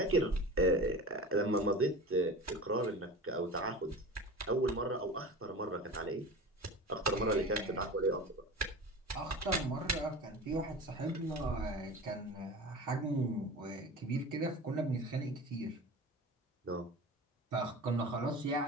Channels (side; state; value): both; normal; correlation 0.33